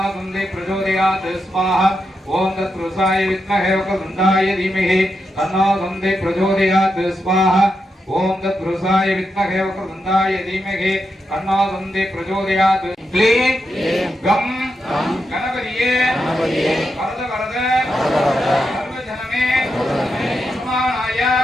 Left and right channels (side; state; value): both; normal; correlation 0.85